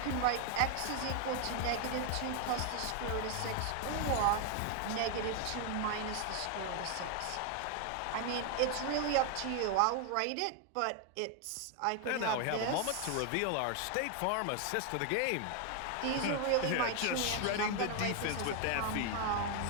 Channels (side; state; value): both; different; correlation 0.01